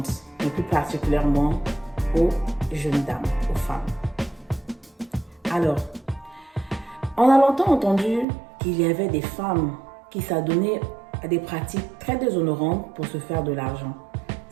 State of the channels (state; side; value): drops out; left; at 8.2 s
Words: mais plus particulièrement aux jeunes dames, aux femmes. Alors, on a longtemps entendu qu'il y avait des femmes qui s'adonnaient à des pratiques très déshonorantes pour se faire de l'argent.